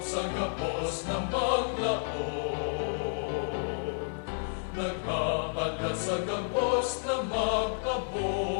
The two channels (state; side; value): silent; right; 57 dB below the other